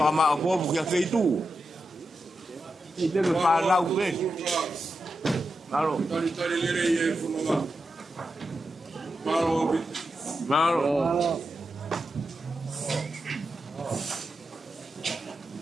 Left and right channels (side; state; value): both; normal; correlation 0.89